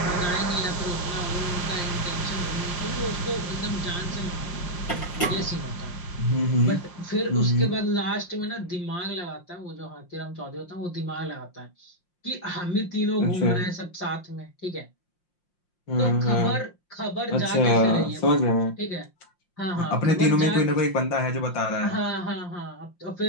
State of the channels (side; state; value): right; late; 5.7 ms